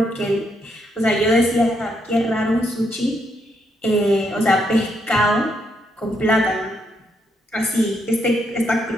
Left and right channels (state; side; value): normal; both; correlation 0.77